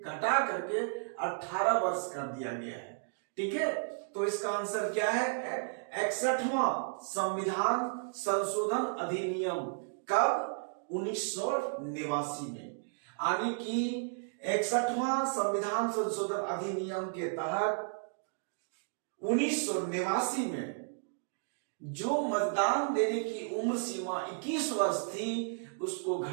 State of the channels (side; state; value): left; silent; digital silence